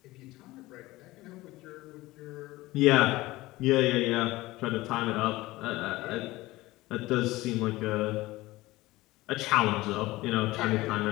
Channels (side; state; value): right; quieter; 19.0 dB